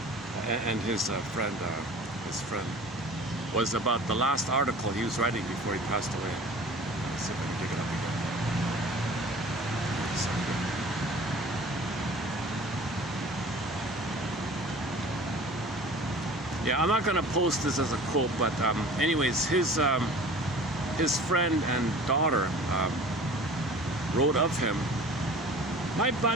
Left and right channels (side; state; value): both; normal; correlation 0.44